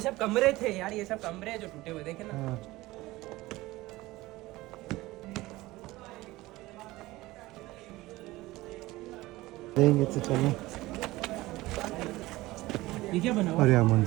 सब कमरे थे यार, ये सब कमरे हैं जो टूटे हुए, देखे ना। हाँ। देंगे तो चलो। ये क्या बना हुआ? और यहाँ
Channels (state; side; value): quieter; left; 18.9 dB